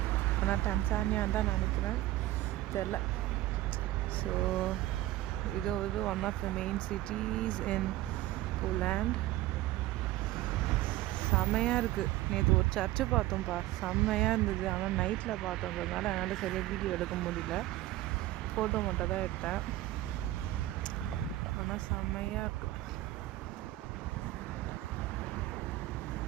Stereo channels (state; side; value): quieter; left; 16.1 dB